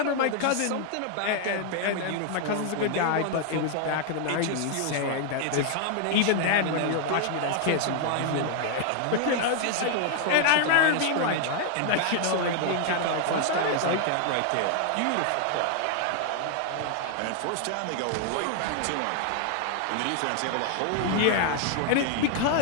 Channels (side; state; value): both; different; correlation 0.00